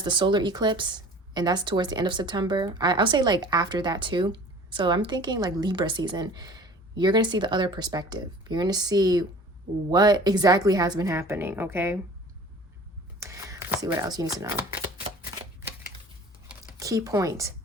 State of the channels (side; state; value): both; normal; correlation 0.45